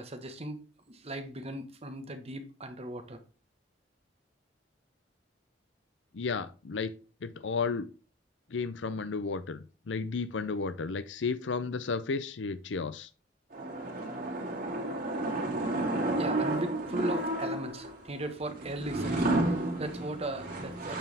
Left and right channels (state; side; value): normal; both; correlation 0.31